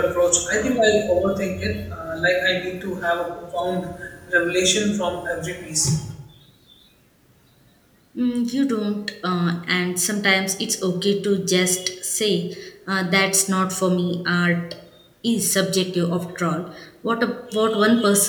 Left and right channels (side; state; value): both; identical; correlation 1.00